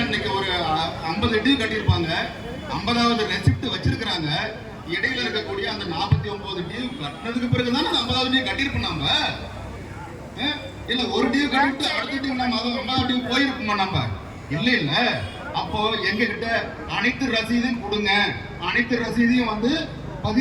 இன்னைக்கு ஒரு 50 டியூ கட்டியிருப்பாங்க, 50வது ரெசிப்ட் வச்சிருக்கிறாங்க. இடையில இருக்கக்கூடிய அந்த 49 டியூ கட்டினதுக்கு பிறகுதான் அந்த 50வது டியூ கட்டியிருப்போம். நாம இல்ல ஒரு டியூ கட்டிட்டு அடுத்த டியூ நம்ம 50வது டியூ போயிருப்போமா? நம்ம இல்ல இல்ல. அப்போ எங்க கிட்ட அனைத்து ரசீதையும் கொடுங்க, அனைத்து ரசீதையும் வந்து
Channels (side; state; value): both; identical; correlation 1.00